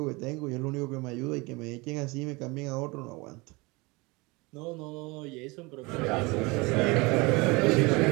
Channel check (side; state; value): left; quieter; 25.3 dB